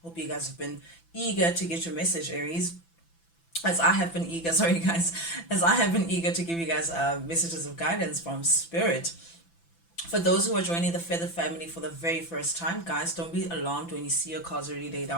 hope you guys have been eager to get your message, Aries. As I have been eager, sorry guys, as I have been eager to give you guys messages of guidance from Spirit. For those who are joining the Feather family for the very first time, guys, don't be alarmed when you see your cards already laid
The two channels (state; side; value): late; right; 5.9 ms